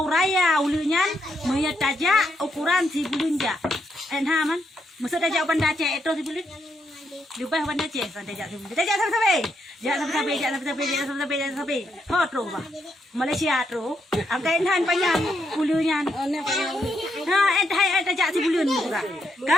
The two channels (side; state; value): both; normal; correlation 0.78